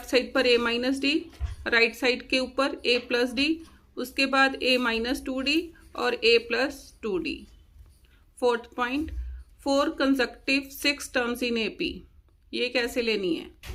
साइड पर ए माइनस डी, राइट साइड के ऊपर ए प्लस डी, उसके बाद ए माइनस 2D और A plus 2D। Fourth point, 4 consecutive 6 terms in AP, ये कैसे लेनी है,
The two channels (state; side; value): identical; both; correlation 1.00